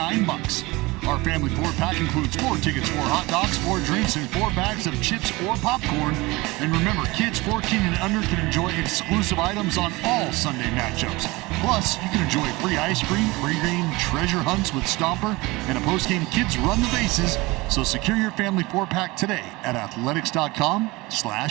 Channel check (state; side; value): quieter; left; 22.4 dB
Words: Our family 4-pack includes 4 tickets, 4 hot dogs, 4 drinks, and 4 bags of chips or popcorn. And remember, kids 14 and under can enjoy exclusive items on all Sunday matchups. Plus, you can enjoy free ice cream, pre-game treasure hunts with Stomper, and a post-game Kids Run the Bases. So secure your family 4-pack today at